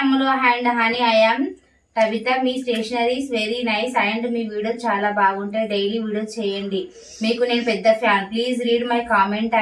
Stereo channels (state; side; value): identical; both; correlation 1.00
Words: Ammulu and honey, I yam Kavitha. Me stationeries very nice and me video చాలా బాగుంటాయి. డైలీ వీడియో చేయండి, మీకు నేను పెద్ద fan. Please read my comment